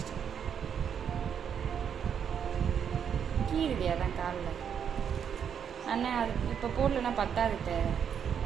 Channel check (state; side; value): quieter; left; 7.9 dB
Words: கீழுது அதான் காலில். அண்ணா அது இப்போ போடலன்னா பத்தாது,